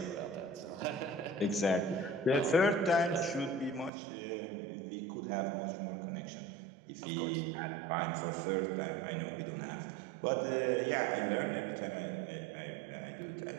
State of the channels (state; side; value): drops out; left; at 3.9 s